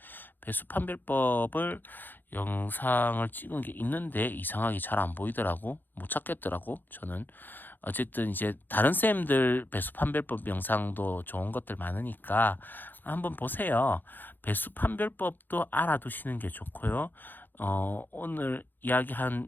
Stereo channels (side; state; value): right; late; 0.091 ms